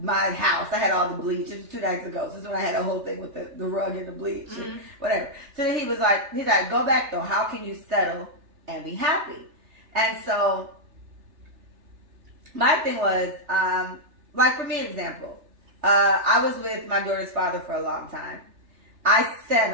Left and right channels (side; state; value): left; late; 3.4 ms